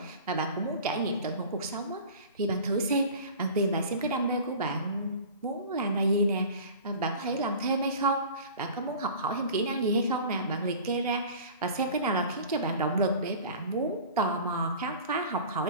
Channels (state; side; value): inverted; both; correlation -0.40